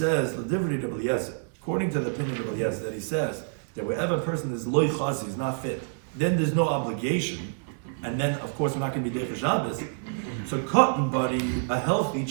according to the opinion of Rabbi Eliezer, that he says that wherever a person is loy chazi, is not fit, then there's no obligation, and then of course we're not going to be Derech Shabbos. So cotton buddy, a healthy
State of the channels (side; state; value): left; silent; digital silence